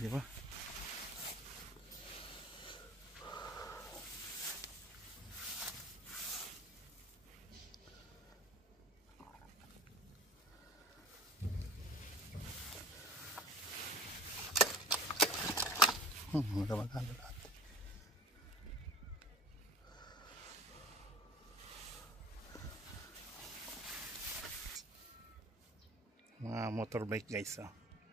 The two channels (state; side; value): normal; both; correlation 0.44